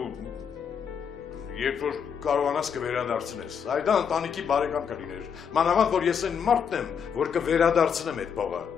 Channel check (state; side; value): quieter; right; 7.1 dB